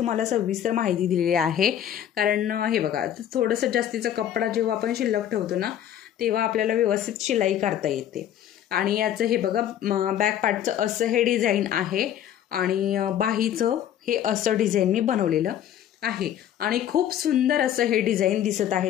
सविस्तर माहिती दिलेली आहे. कारण हे बघा थोडंसं जास्तीचा कपडा जेव्हा आपण शिल्लक ठेवतो ना तेव्हा आपल्याला व्यवस्थित शिलाई करता येते. आणि याचं हे बघा बॅक पार्टचं असं हे डिझाईन आहे आणि बाहीचं हे असं डिझाईन मी बनवलेलं आहे आणि खूप सुंदर असं हे डिझाईन दिसत आहे.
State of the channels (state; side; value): quieter; right; 10.7 dB